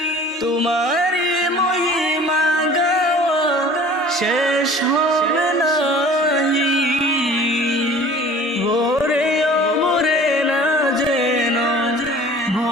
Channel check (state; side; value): normal; both; correlation 0.46